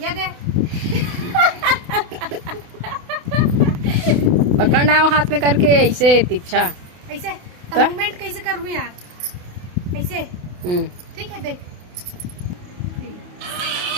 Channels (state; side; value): late; left; 28 ms